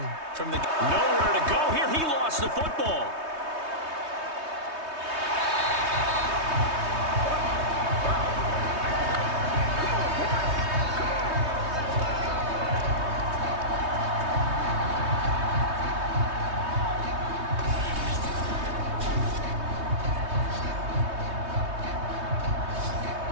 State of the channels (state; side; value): late; left; 3.2 ms